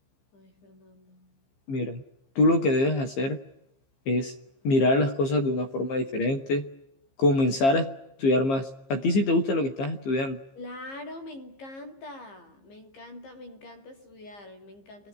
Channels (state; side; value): late; right; 15 ms